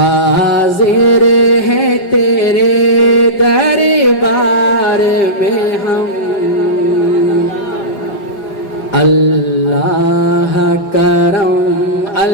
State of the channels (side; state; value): right; late; 5.4 ms